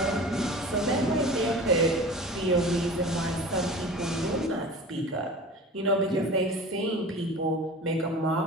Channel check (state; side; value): normal; both; correlation 0.37